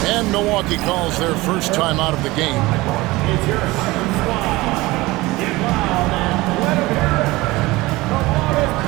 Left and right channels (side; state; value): left; quieter; 20.5 dB